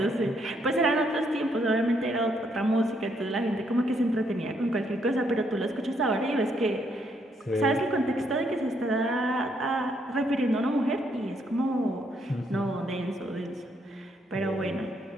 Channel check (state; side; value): normal; both; correlation 0.73